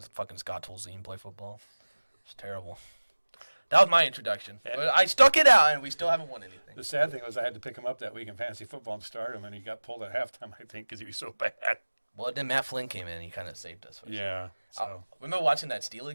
fucking Scott Tolzien play football. It's terrible. That was my introduction. But I stuck it out, and we still haven't won anything. The sad thing was I had to pick him up that week in fantasy football to start him, and he got pulled at halftime, I think, because he was so bad. Well, then Matt Flynn came in, and he kind of saved us. Yeah. So. Remember watching that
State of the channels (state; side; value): inverted; both; correlation -1.00